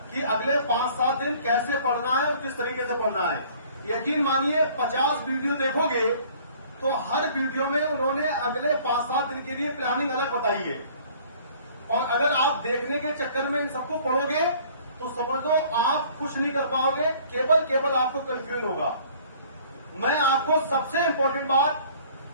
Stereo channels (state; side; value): inverted; both; correlation -0.53